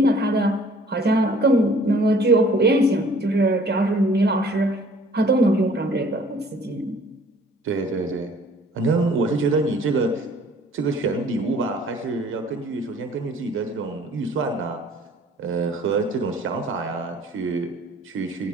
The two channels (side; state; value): both; normal; correlation 0.55